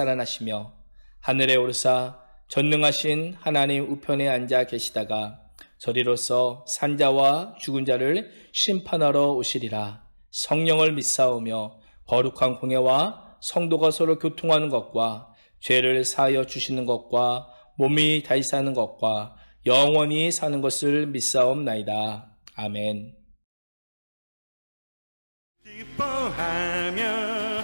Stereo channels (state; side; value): inverted; both; correlation -1.00